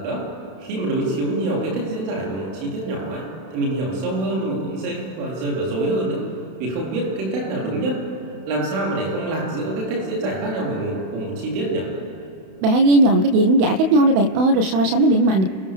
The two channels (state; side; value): late; left; 31 ms